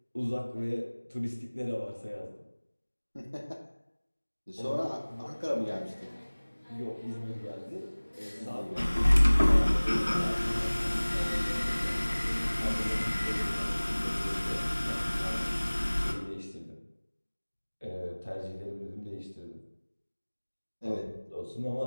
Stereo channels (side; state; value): both; inverted; correlation -1.00